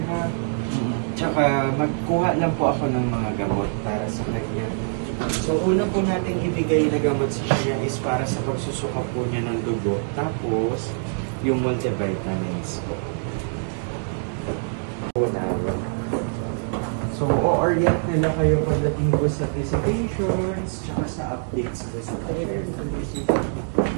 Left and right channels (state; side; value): silent; left; digital silence